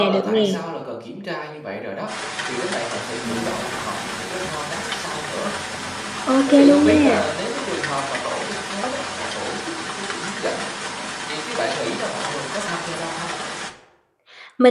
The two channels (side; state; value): both; identical; correlation 1.00